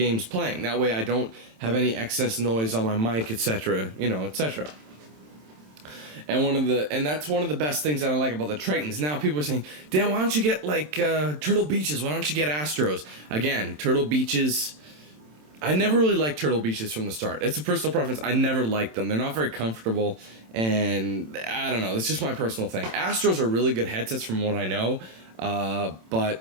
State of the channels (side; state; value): left; late; 27 ms